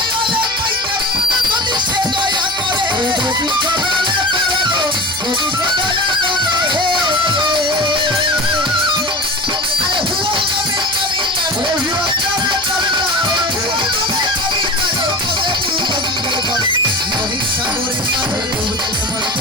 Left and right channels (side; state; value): right; noise; hum, 20 dB below the sound